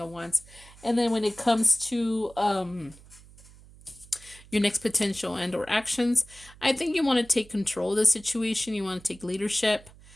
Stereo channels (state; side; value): noise; right; hum, 22 dB below the sound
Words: of Wands. And then when it comes to your next potential and or actions, I think you want to take control of the situation. You want to take leadership.